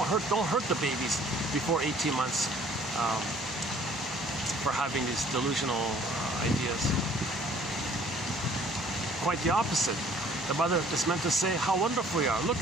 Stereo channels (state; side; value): normal; both; correlation 0.56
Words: hurt the babies before 18 months for having these delusional ideas. Quite the opposite. The mother is meant to say, how wonderful you are.